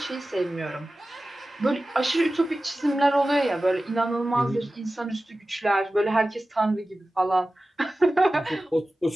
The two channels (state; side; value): normal; both; correlation 0.96